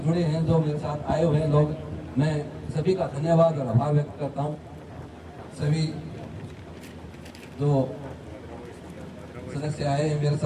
हैं जो मेरे साथ आए हुए हैं लोग, मैं सभी का धन्यवाद और आभार व्यक्त करता हूँ। सभी जो सदस्य आए हैं मेरे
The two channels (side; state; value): both; identical; correlation 1.00